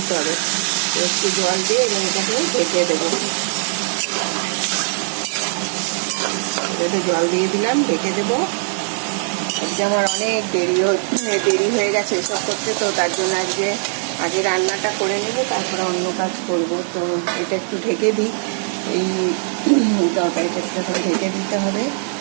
হবে। তো একটু জল দিয়ে এবং এটাকে ঢেকে দেবো। এটাতে জল দিয়ে দিলাম, ঢেকে দেবো। আজকে আমার অনেক দেরি হয়ে গেছে এসব করতে। তো তার জন্য আগে রান্নাটা করে নেবো, তারপরে অন্য কাজ করব। তো এটা একটু ঢেকে দিই, এই তরকারিটা একটু ঢেকে দিতে হবে।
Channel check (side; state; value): left; silent; 60 dB below the other